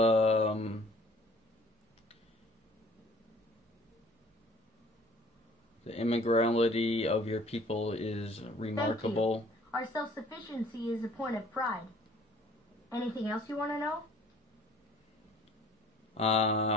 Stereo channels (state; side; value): normal; both; correlation 0.53